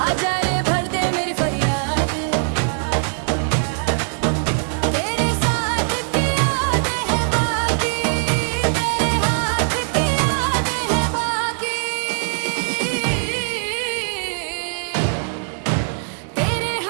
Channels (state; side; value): silent; left; digital silence